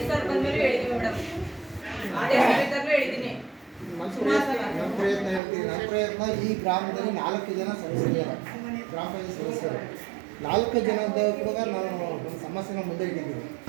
ಸರ್ ಬಂದ್ಮೇಲೆ ಹೇಳಿದ್ದೀವಿ ಮೇಡಮ್. ಅದೇ ಸರಿದ್ದಾಗಲೂ ಹೇಳಿದ್ದೀನಿ. ನನ್ನ ಪ್ರಯತ್ನ ಈ ಗ್ರಾಮದಲ್ಲಿ 4 ಜನ ಸದಸ್ಯರಿದ್ದಾರೆ, ಗ್ರಾಮ ಪಂಚಾಯತ್ ಸದಸ್ಯರು. 4 ಜನದ ಕೂಡ ನಾನು ಒಂದು ಸಮಸ್ಯೆನ ಮುಂದೆ ಇಟ್ಟಿದ್ದೀನಿ.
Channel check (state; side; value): drops out; left; at 5.4 s